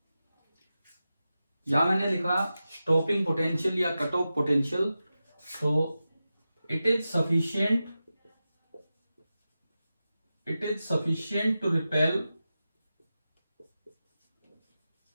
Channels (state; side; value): inverted; both; correlation -0.93